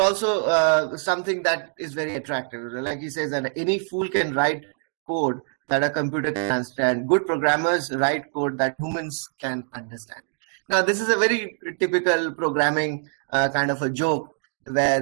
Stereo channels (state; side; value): silent; left; 62 dB below the other